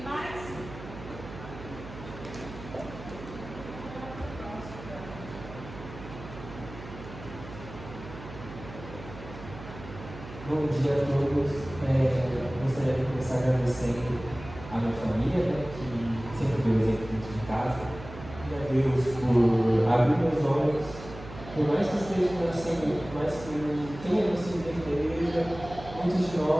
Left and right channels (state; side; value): noise; right; hum, 14 dB below the sound